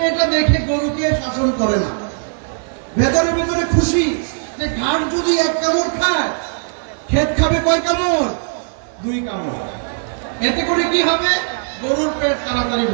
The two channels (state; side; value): silent; left; 60 dB below the other